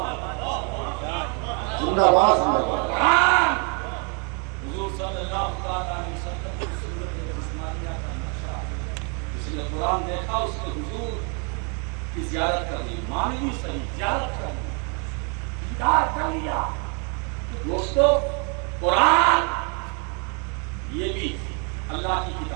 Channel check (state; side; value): quieter; left; 35.5 dB